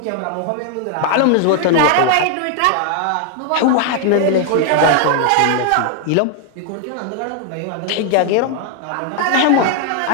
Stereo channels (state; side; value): different; both; correlation 0.00